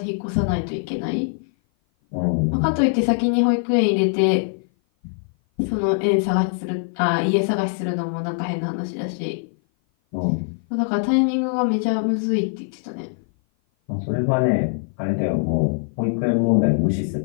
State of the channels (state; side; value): silent; right; 56 dB below the other